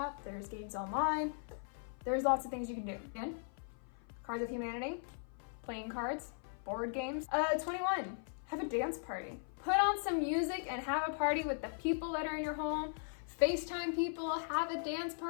there's games online. There's lots of things you can do. Again, Cards of Humanity, playing cards, board games. 21, have a dance party. Put on some music and have a party with the people that are in your home. FaceTime people, have a dance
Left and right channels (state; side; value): silent; right; 52 dB below the other